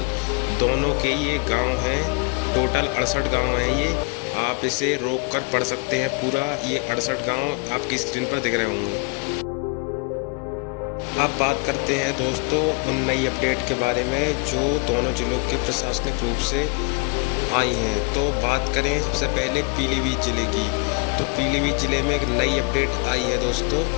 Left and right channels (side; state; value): right; quieter; 33.8 dB